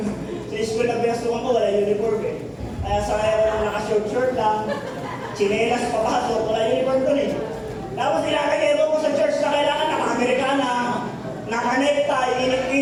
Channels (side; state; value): both; identical; correlation 1.00